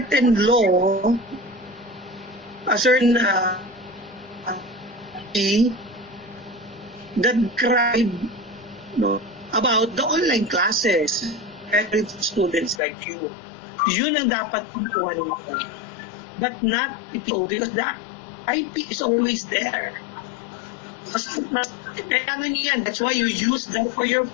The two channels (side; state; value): right; drops out; at 12.8 s